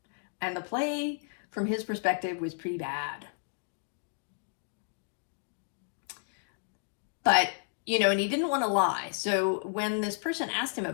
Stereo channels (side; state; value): right; silent; 56 dB below the other